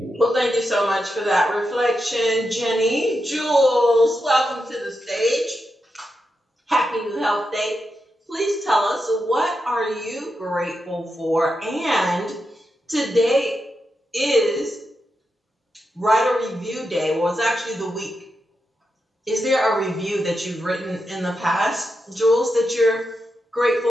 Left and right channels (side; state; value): both; normal; correlation 0.87